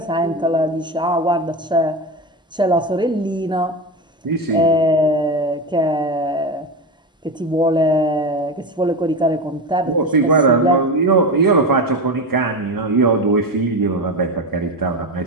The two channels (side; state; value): both; normal; correlation 0.19